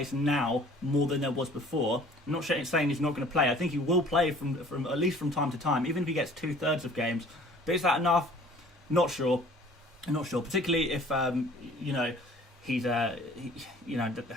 now, more than there was before. I'm not saying he's not going to play. I think he will play from at least from time to time, even if he gets 2/3 of games. But is that enough? Not sure. Particularly if he's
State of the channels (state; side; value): normal; both; correlation 0.51